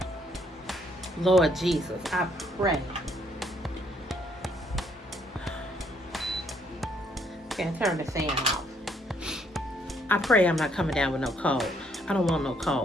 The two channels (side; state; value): both; normal; correlation 0.69